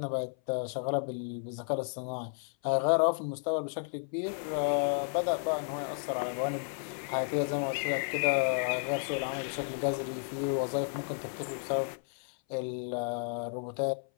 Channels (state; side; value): silent; right; 56 dB below the other